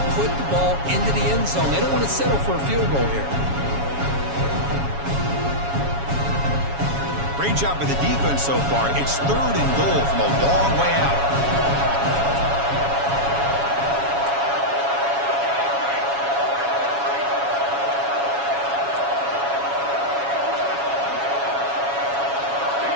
put the ball into the end zone. They don't want to settle for a field goal here. Great job by the defense so far. It's third and goal from a long way out.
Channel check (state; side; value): late; left; 7.2 ms